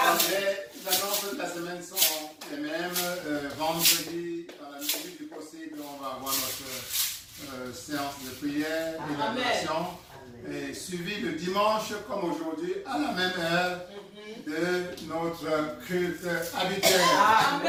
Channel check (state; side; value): identical; both; correlation 1.00